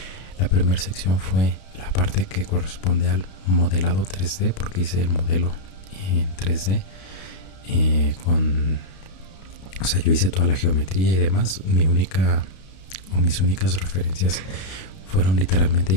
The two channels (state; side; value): late; right; 32 ms